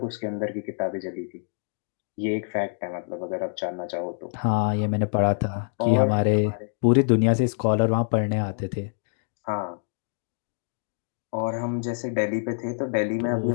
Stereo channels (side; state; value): right; silent; digital silence